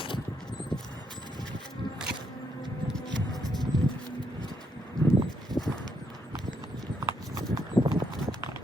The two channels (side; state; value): both; normal; correlation 0.76